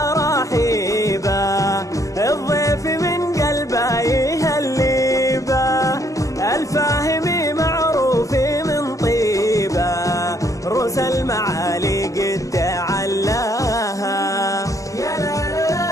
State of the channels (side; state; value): right; late; 0.16 ms